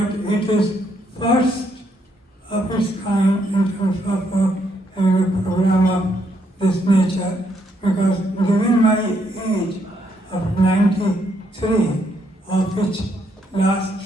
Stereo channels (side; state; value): both; normal; correlation 0.74